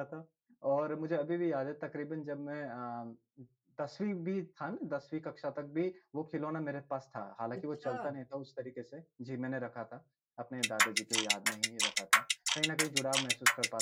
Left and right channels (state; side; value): identical; both; correlation 1.00